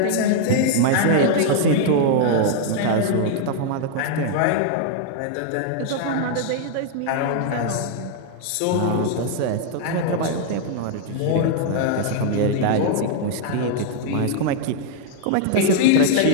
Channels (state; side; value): different; both; correlation -0.01